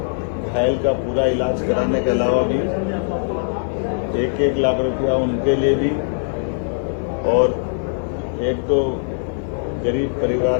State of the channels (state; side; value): silent; right; 59 dB below the other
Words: घायल का पूरा इलाज कराने के अलावा भी 1-1 लाख रुपया उनके लिए भी, और 1-2 गरीब